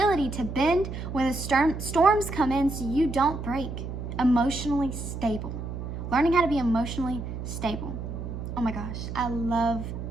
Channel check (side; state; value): right; noise; hum, 7 dB below the sound